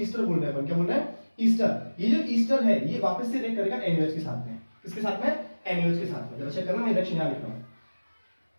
बोल रहे हैं, क्या बोल रहे हैं? ईस्टर। ये जो ईस्टर है ये वापस से रिएक्ट करेगा NaOH के साथ में। किसके साथ में? NaOH के साथ में। जरा चेक करना, मैं रिएक्शन यहां लिख रहा हूं,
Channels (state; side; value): inverted; both; correlation -1.00